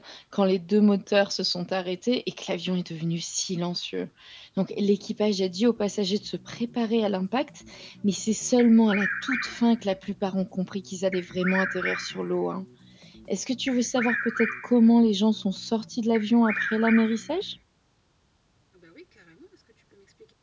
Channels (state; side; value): identical; both; correlation 1.00